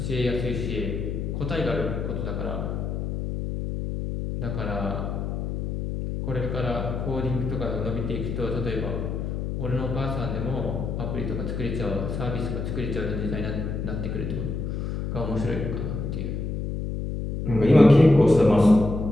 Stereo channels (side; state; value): left; noise; hum, 3 dB below the sound